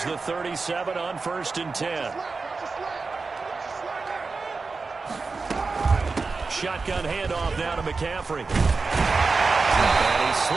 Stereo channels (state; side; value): quieter; left; 4.2 dB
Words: the 37 on 1st and 10. Shotgun handoff now to McCaffrey. And he